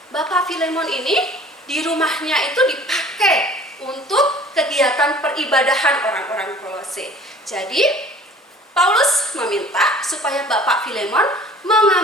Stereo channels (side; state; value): both; normal; correlation 0.49